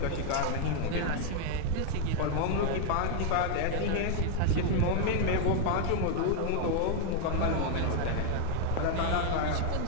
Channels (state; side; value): different; both; correlation 0.00